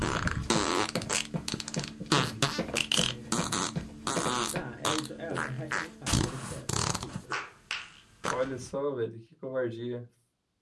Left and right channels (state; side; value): identical; both; correlation 1.00